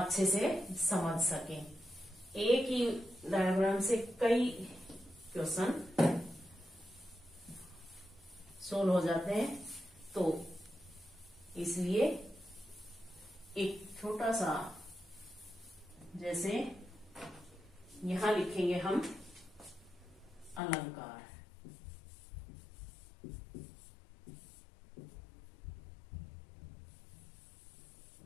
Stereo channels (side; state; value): right; drops out; at 20.6 s